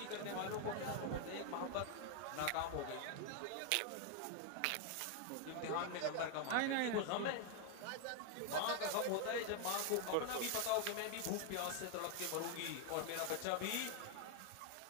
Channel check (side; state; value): both; different; correlation 0.00